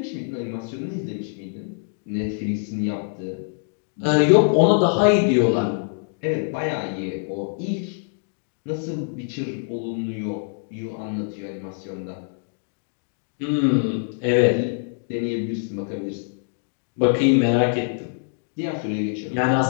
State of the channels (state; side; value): silent; right; digital silence